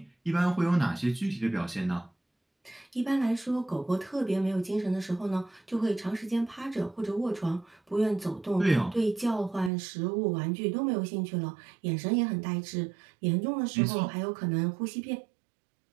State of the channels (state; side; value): drops out; left; at 9.7 s